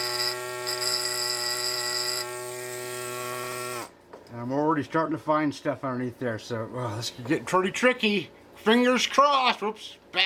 And I'm already starting to find stuff underneath there, so well, this could get pretty tricky. Fingers crossed. Whoops,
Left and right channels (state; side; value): identical; both; correlation 1.00